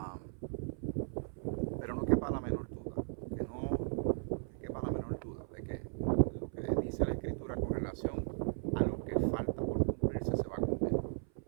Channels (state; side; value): silent; left; 53 dB below the other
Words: Pero no quepa la menor duda, que quepa la menor duda de que lo que dice la Escritura con relación a lo que falta por cumplirse se va a cumplir.